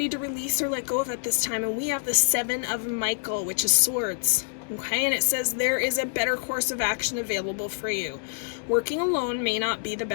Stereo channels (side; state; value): right; silent; digital silence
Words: to release or let go of at this time? And we have the Seven of Michael, which is swords. Okay, and it says there is a better course of action available for you. Working alone may not be the